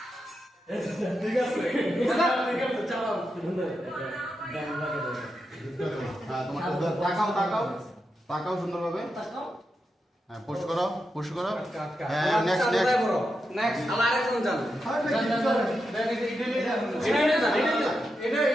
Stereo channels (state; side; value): normal; both; correlation 0.87